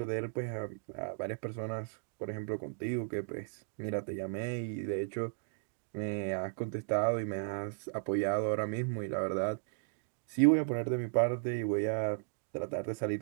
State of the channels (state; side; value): silent; left; digital silence